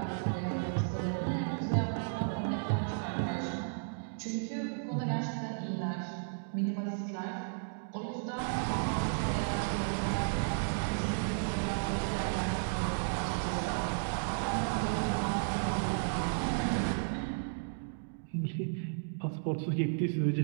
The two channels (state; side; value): silent; left; digital silence